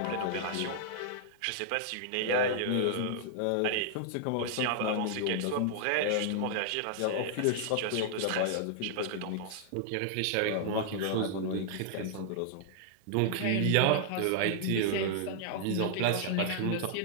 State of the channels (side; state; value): both; different; correlation -0.01